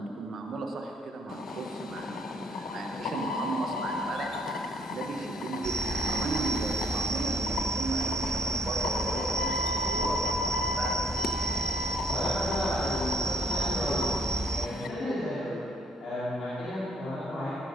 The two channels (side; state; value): both; normal; correlation 0.65